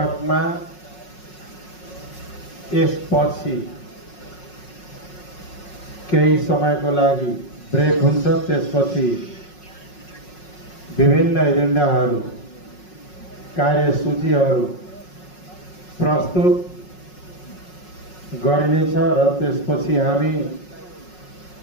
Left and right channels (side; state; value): right; late; 5.5 ms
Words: यसपछि केही समयको लागि ब्रेक हुन्छ। त्यसपछि विभिन्न एजेन्डाहरू कार्यसूचीहरू प्रस्तुत गरिनेछ र त्यसपछि हामी